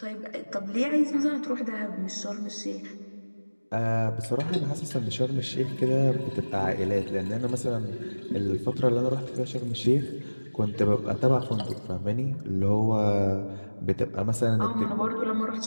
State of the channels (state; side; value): inverted; both; correlation -1.00